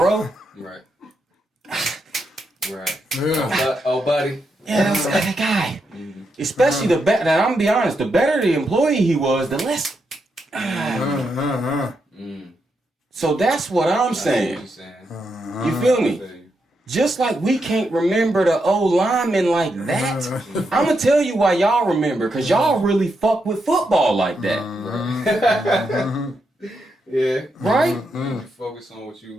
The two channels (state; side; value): normal; both; correlation 0.83